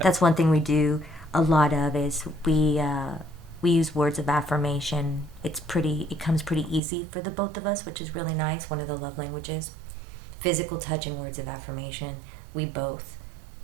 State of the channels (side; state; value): left; drops out; at 6.8 s